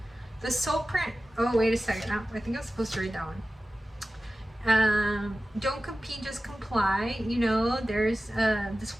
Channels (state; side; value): normal; both; correlation 0.95